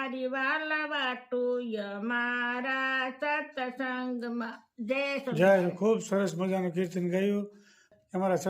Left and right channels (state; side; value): identical; both; correlation 1.00